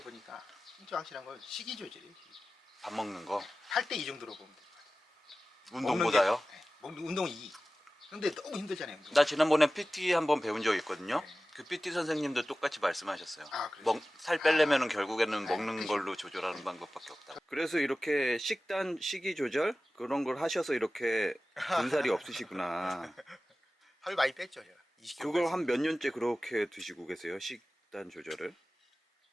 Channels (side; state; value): both; normal; correlation 0.96